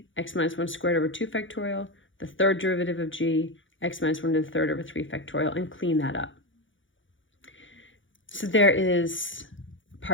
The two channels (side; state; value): right; late; 0.56 ms